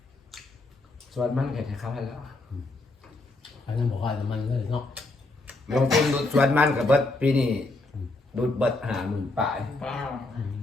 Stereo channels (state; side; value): quieter; right; 3.0 dB